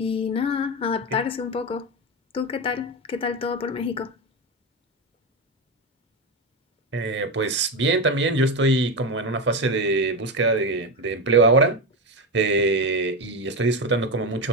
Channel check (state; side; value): normal; both; correlation 0.15